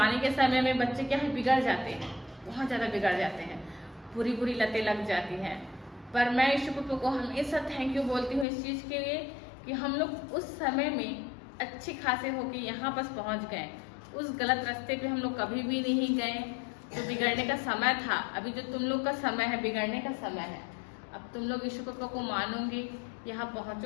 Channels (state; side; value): drops out; right; at 8.5 s